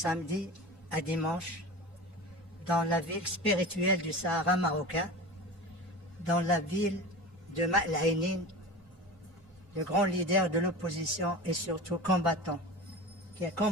à dimanche, dans la ville spirituelle du Sahara marocain, dans la ville de Ma'al-Ainin, le grand leader de l'opposition et surtout combattant, qui a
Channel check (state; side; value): normal; both; correlation 0.31